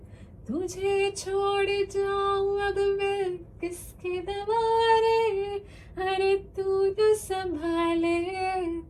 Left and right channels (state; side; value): identical; both; correlation 1.00